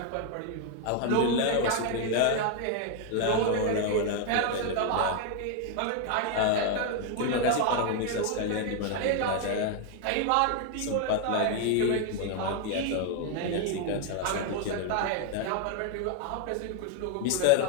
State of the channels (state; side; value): different; both; correlation 0.01